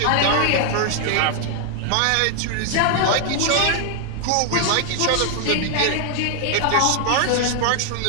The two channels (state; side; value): different; both; correlation 0.00